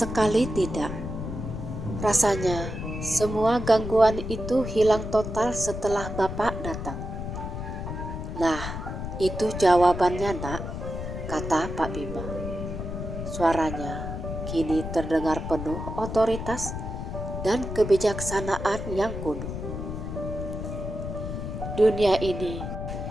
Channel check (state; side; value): noise; left; rumble, 6 dB below the sound